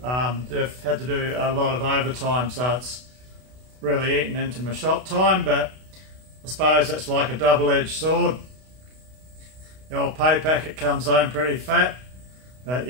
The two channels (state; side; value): late; left; 32 ms